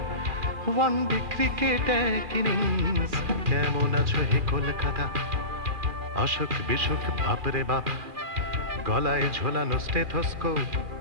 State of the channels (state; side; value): late; left; 2.4 ms